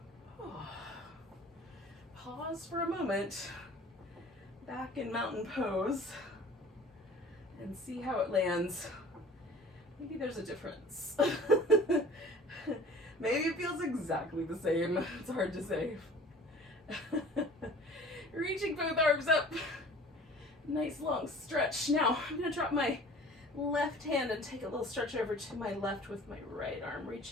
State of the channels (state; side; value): normal; both; correlation 0.46